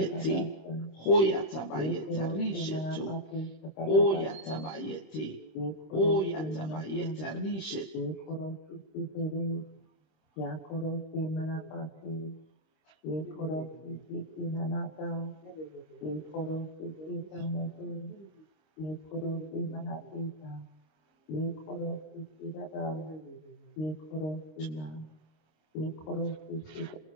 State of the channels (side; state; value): right; late; 26 ms